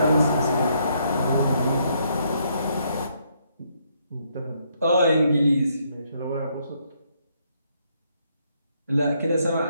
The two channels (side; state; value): both; inverted; correlation -0.73